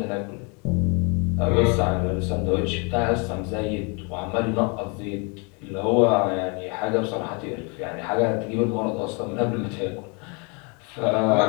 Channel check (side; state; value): right; quieter; 32.8 dB